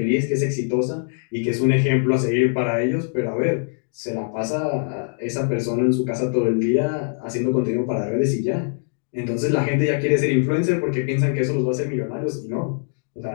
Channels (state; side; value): silent; right; 61 dB below the other